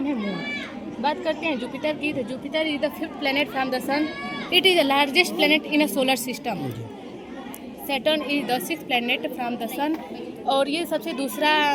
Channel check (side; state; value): both; identical; correlation 1.00